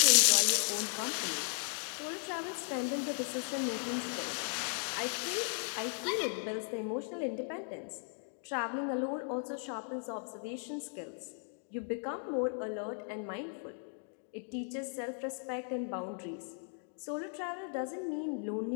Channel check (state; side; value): silent; right; 53 dB below the other